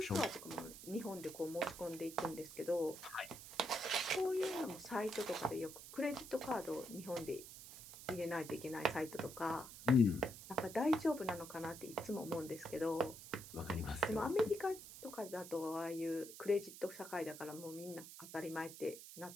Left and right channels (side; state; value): right; noise; hiss, 13 dB below the sound